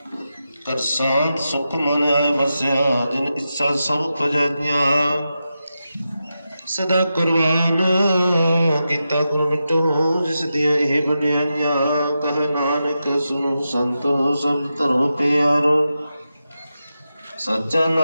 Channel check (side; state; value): both; inverted; correlation -0.90